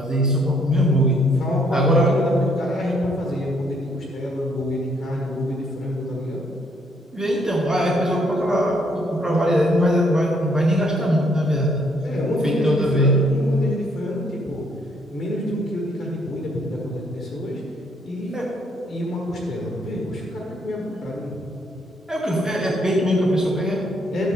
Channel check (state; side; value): normal; both; correlation 0.69